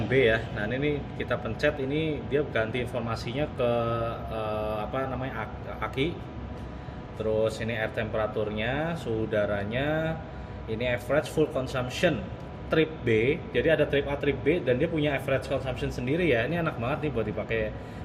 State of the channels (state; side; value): identical; both; correlation 1.00